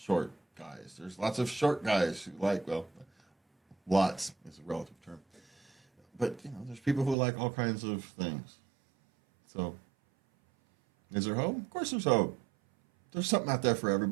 guys. There's lots of short guys who like, lots is a relative term. But, there's people who like all kinds of things. So, is there hope? Of course there's hope. There's something out there for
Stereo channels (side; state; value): left; drops out; at 7.2 s